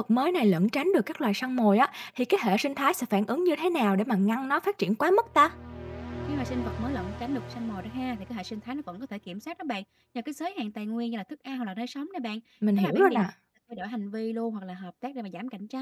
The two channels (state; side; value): identical; both; correlation 1.00